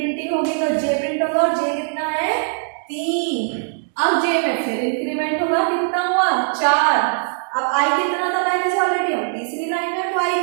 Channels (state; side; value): silent; left; digital silence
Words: होगी तो जे प्रिंट होगा, और जे कितना है 3। अब जे में फिर इंक्रीमेंट होगा, कितना हुआ 4। अब आई कितना था पहले से ऑलरेडी, हम तीसरी लाइन में, तो आई